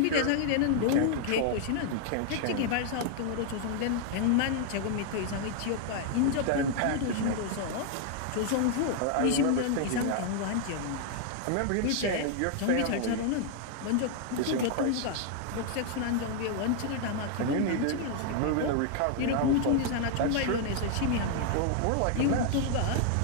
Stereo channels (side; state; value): both; different; correlation 0.00